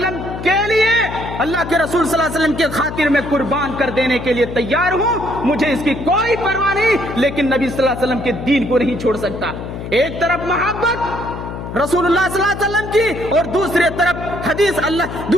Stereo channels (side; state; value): left; noise; hum, 8 dB below the sound